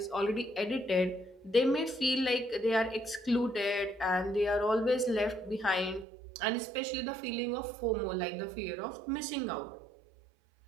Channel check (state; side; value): drops out; left; at 6.1 s